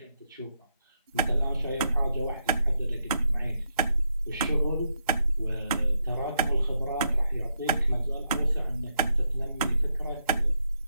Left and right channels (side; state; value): both; inverted; correlation -0.79